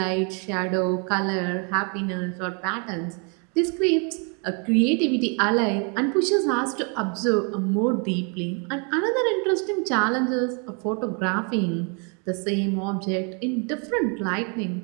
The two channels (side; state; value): left; quieter; 36.7 dB